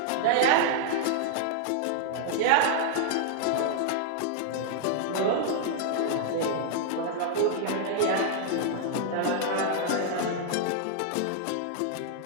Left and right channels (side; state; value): both; different; correlation -0.01